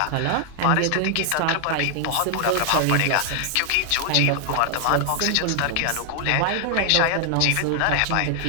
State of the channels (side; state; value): both; different; correlation 0.00